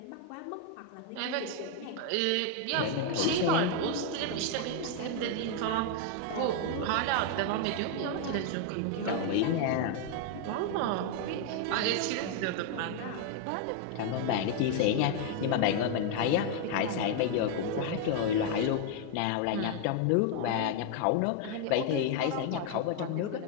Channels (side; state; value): both; different; correlation 0.00